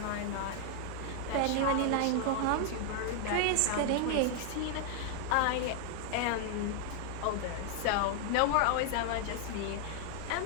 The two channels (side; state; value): both; different; correlation 0.00